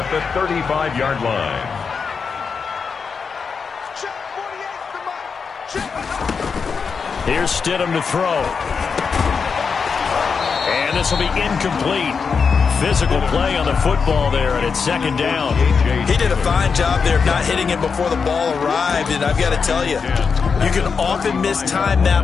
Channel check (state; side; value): quieter; right; 5.6 dB